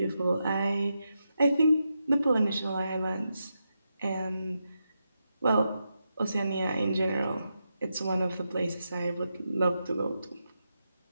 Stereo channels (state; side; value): inverted; both; correlation -0.86